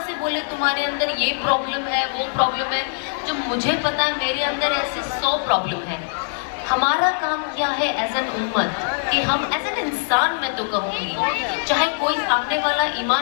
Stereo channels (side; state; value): right; silent; digital silence